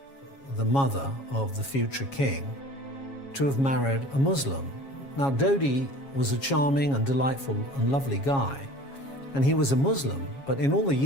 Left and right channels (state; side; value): late; right; 7.3 ms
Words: the mother of the future king, to have married a Muslim. Now, Dody was a charming and delightful and lovely guy, and he was a Muslim, but in all the